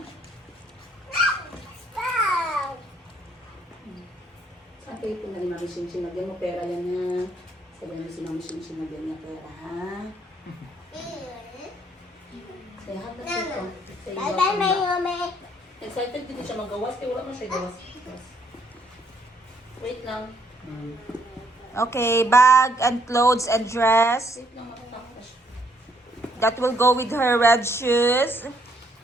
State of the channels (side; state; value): both; normal; correlation 0.69